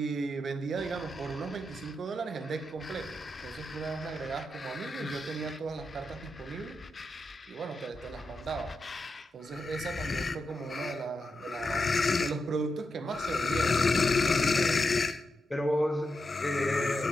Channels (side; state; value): both; normal; correlation 0.86